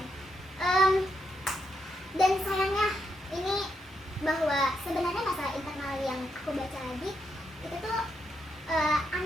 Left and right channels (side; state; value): both; normal; correlation 0.81